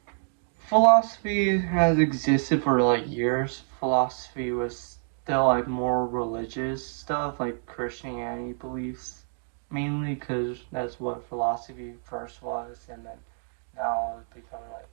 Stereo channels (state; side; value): silent; left; 60 dB below the other